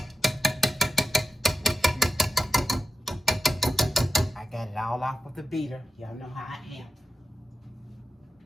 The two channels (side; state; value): both; normal; correlation 0.91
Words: I got it all off of the beater. Y'all know how I am.